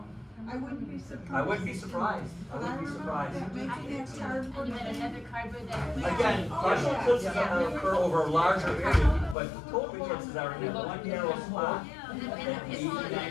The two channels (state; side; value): drops out; right; at 9.3 s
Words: I wouldn't be surprised. I wouldn't be surprised, I But I wouldn't be remember surprised. that making that cardboard. And then another cardboard that. Again, partial eclipses occur over a larger area, but total eclipses are in that one narrow spot. And the people went